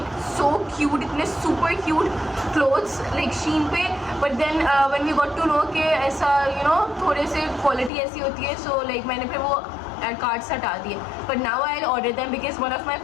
so cute, इतने super cute clothes like Shein पे. But then when we got to know कि ऐसा थोड़े से क्वालिटी ऐसी होती है, सो लाइक मैंने फिर वो कार्ड से हटा दिए. But now I order them because one of my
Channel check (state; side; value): drops out; right; at 7.9 s